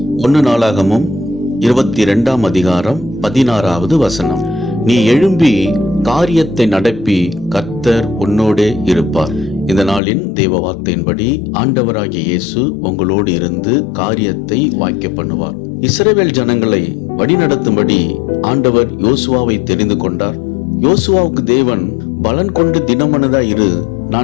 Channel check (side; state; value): right; drops out; at 10.0 s